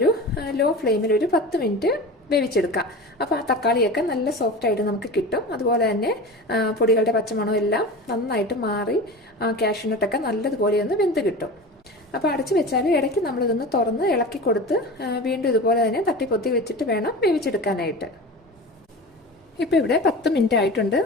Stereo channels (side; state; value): both; normal; correlation 0.32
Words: ലോ ഫ്ലെയിമിൽ ഒരു 10 മിനിറ്റ് വേവിച്ചെടുക്കാം. അപ്പോൾ ആ തക്കാളിയൊക്കെ നല്ല സോഫ്റ്റായിട്ട് നമുക്ക് കിട്ടും. അതുപോലെ തന്നെ പൊടികളുടെ പച്ചമണം എല്ലാം നന്നായിട്ട് മാറി കാഷ്യൂനട്ടൊക്കെ നല്ലതുപോലെ ഒന്ന് വെന്ത് കിട്ടും. അപ്പോൾ അടച്ചു വെച്ചാൽ ഇടയ്ക്ക് നമ്മളിതൊന്ന് തുറന്ന് ഇളക്കി കൊടുത്ത് വീണ്ടും ഇതുപോലെ തന്നെ തട്ടിപ്പൊത്തി വെച്ചിട്ട് വേണം വേവിച്ചെടുക്കാനായിട്ട്. ഇപ്പോൾ ഇവിടെ 10 മിനിറ്റ് ആയിട്ടുണ്ട്.